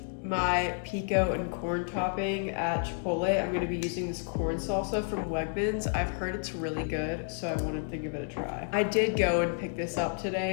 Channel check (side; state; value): right; silent; 57 dB below the other